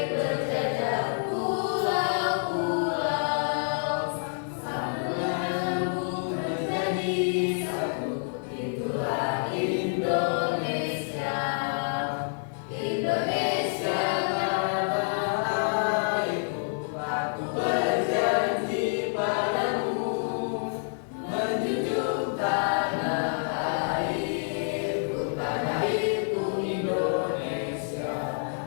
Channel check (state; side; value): silent; right; digital silence